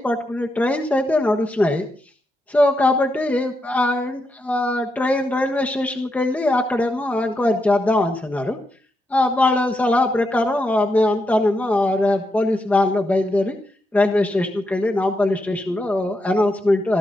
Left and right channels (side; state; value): both; normal; correlation 0.83